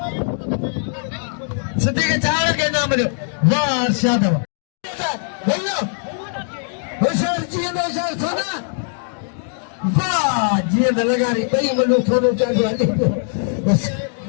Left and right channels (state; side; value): silent; right; 66 dB below the other